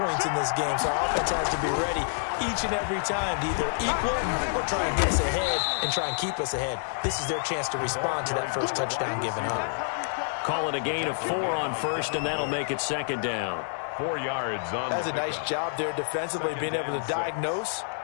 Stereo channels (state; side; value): silent; right; digital silence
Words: in this game, so our offense has to be ready each and every time to either equal or try and get us ahead and try and keep us ahead. This is their chance to respond to that first touchdown given up. Call it a gain of 4 on 1st, and that'll make it 2nd down. 4 yards on That's a nice job there defensively, being able to diagnose